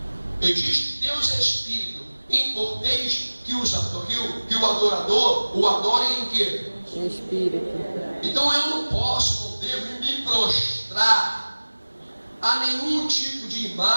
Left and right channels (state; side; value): inverted; both; correlation -1.00